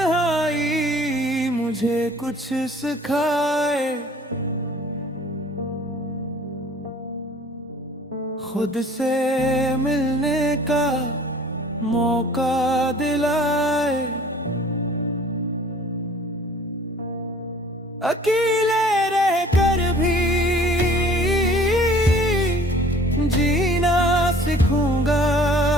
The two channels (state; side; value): normal; both; correlation 0.51